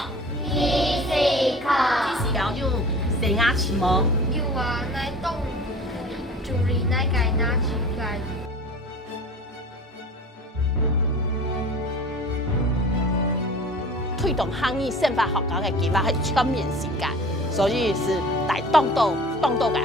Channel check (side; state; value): both; normal; correlation 0.41